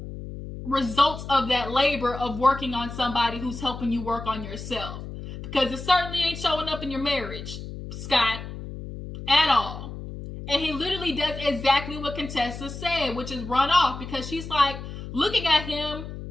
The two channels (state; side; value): noise; left; hum, 10 dB below the sound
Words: results of that labor of working on somebody who's helping you work on yourself? Because it certainly ain't showing up in your marriage, Scott, at all. And he literally does exactly what Contessa said, which is run off, because she's like looking at him